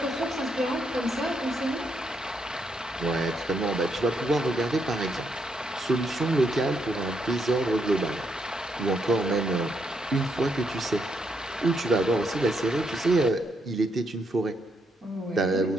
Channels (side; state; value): both; normal; correlation 0.78